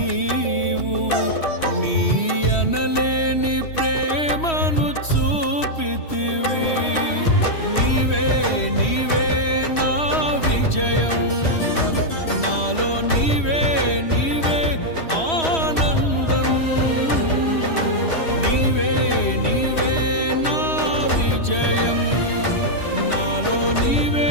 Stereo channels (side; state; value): right; late; 3.1 ms